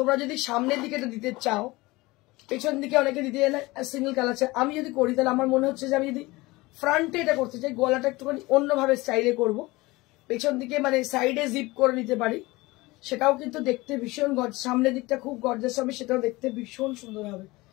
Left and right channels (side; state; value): right; quieter; 21.5 dB